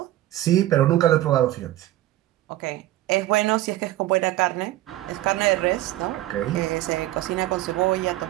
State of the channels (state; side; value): quieter; left; 15.3 dB